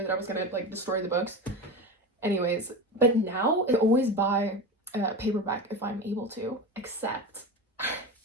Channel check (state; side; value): normal; both; correlation 0.25